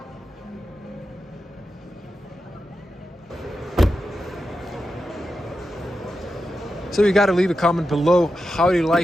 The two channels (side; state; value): both; normal; correlation 0.89